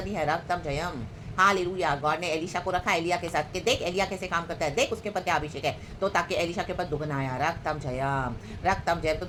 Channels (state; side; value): identical; both; correlation 1.00